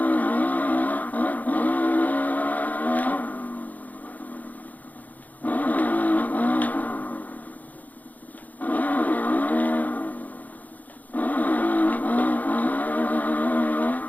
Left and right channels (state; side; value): late; right; 0.079 ms